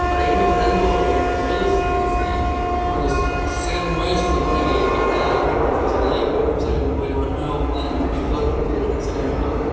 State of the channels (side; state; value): both; identical; correlation 1.00